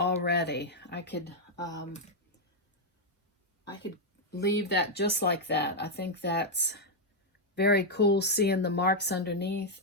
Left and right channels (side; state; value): both; normal; correlation -0.01